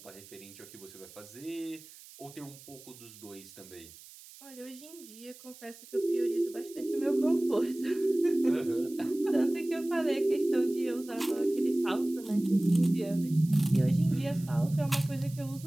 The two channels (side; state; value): right; noise; hiss, 19 dB below the sound